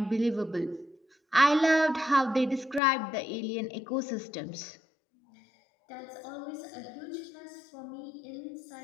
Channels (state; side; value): drops out; right; at 2.8 s